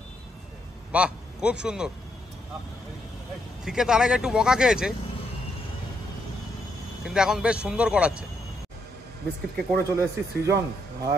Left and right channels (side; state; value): both; normal; correlation 0.77